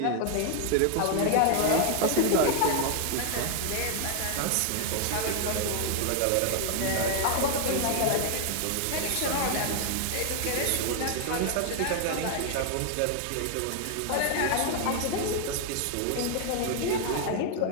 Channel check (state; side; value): different; both; correlation 0.00